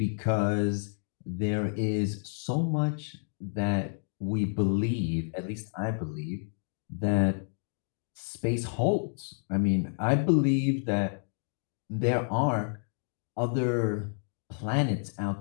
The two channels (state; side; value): silent; right; digital silence